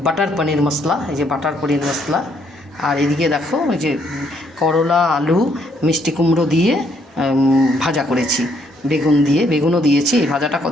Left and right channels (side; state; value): both; normal; correlation 0.70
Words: বাটার পনির মশলা, এই যে বাটার পনির মশলা। আর এদিকে দেখো এই যে করলা, আলু, মিষ্টি কুমড়ো দিয়ে ভাজা করেছি, বেগুন দিয়ে, বেগুনও দিয়েছি। এই ভাজাটা